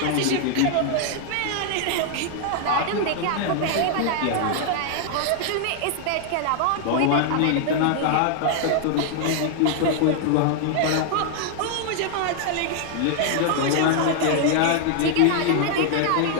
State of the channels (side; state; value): both; different; correlation 0.00